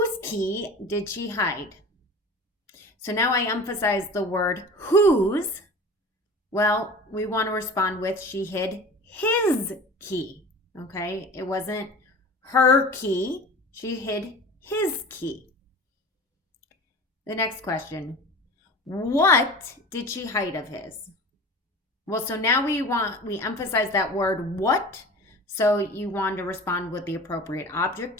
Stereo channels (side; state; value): both; normal; correlation 0.38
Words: key did she hide? So now I emphasize the word whose. Well, we want to respond with she hid his key. Okay, it wasn't her key. She hid his key. The next question, what did she hide of his? Well, so now we emphasize that word what. So you want to respond with the appropriate